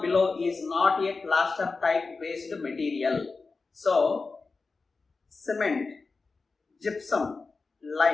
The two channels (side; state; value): right; quieter; 4.1 dB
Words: below is not a plaster type based material? So cement, gypsum,